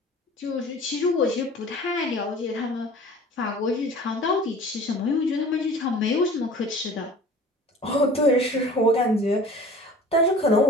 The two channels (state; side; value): normal; both; correlation 0.44